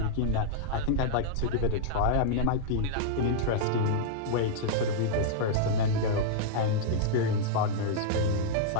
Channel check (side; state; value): both; different; correlation -0.01